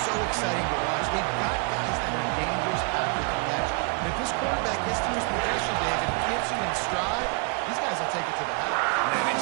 so exciting to watch, they've got guys that are dangerous after the catch. And if this quarterback gets to his progression, David, gets you in stride, these guys will take it to the house. Man,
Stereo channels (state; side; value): quieter; left; 34.3 dB